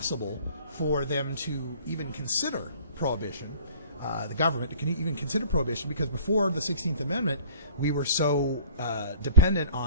for them to even consider prohibition. The government can even consider prohibition, because before the 16th Amendment, we were so dependent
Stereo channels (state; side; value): inverted; both; correlation -0.50